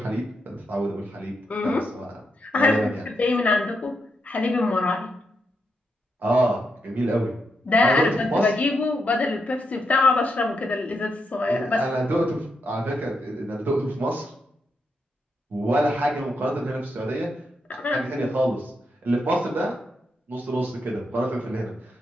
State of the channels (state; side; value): normal; both; correlation 0.83